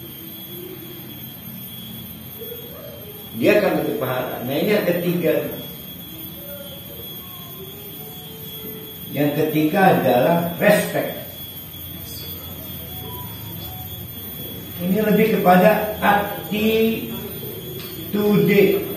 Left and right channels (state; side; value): identical; both; correlation 1.00